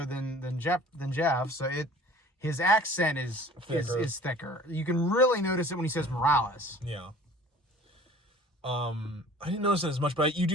than Jeff. So his accent is thicker. You can really notice it when he says Morales. Yeah. I didn't notice it as much, but you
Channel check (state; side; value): normal; both; correlation 0.48